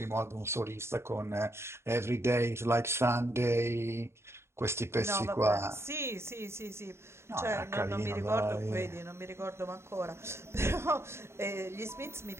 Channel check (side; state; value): left; late; 0.13 ms